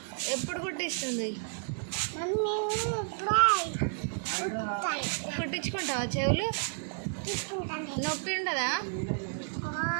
ఎప్పుడు కుట్టిస్తుంది? మమ్మీ కుట్టించుకుంటావా చెవులు? నొప్పి ఉండదా?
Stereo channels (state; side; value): silent; left; digital silence